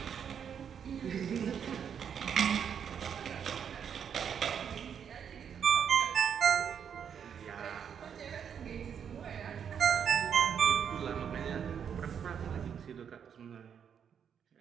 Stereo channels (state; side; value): quieter; left; 7.8 dB